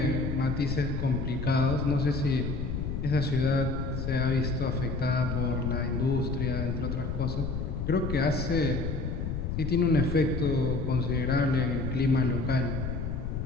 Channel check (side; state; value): left; noise; rumble, 3 dB below the sound